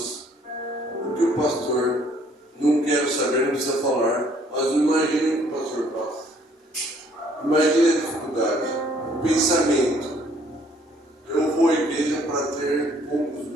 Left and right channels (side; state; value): both; normal; correlation 0.62